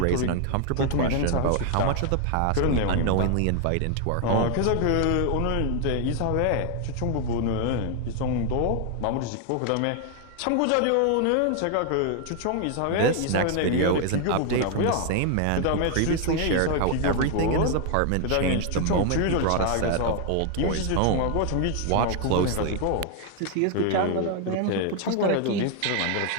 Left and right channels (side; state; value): both; different; correlation 0.00